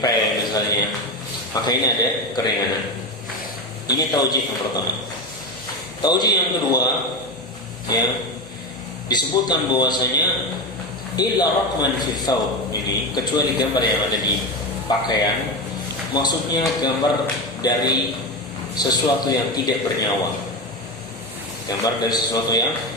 pel misalnya. Maka ini ada keringanan. Ini taujih yang pertama. Taujih yang kedua, ya, disebutkan bahwasanya illa raqman fi thawb, ini kecuali gambar yang ada di pakaian, maksudnya gambar dari sesuatu yang tidak bernyawa. Gambar dari sesuatu yang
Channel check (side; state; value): both; normal; correlation 0.18